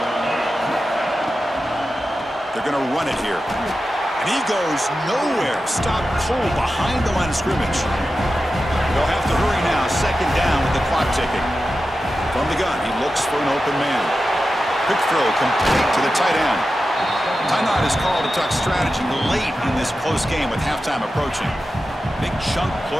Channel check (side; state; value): both; normal; correlation 0.92